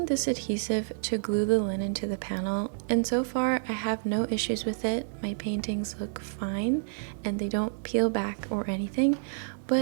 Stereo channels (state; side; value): silent; left; digital silence